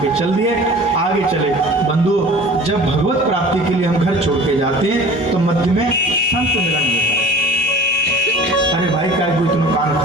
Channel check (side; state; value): both; normal; correlation 0.44